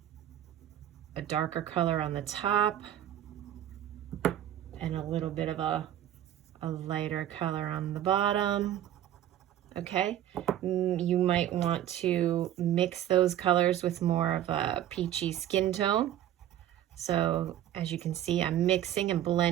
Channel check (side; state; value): left; quieter; 11.8 dB